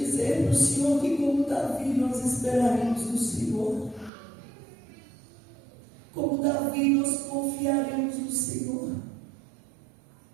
para o Senhor que, como Davi, nós esperaremos no Senhor. Como Davi, nós confiaremos no Senhor.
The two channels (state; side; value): drops out; left; at 4.1 s